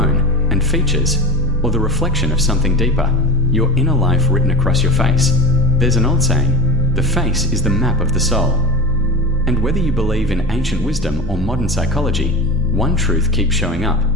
and features? Or the reflection of something deeper, your inner life written across your face? There's an old saying, the face is the map of the soul. And whether you believe in ancient wisdom or modern psychology, one truth keeps showing up.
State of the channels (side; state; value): both; normal; correlation 0.29